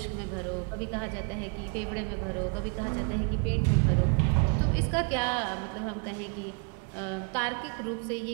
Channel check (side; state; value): left; quieter; 36.2 dB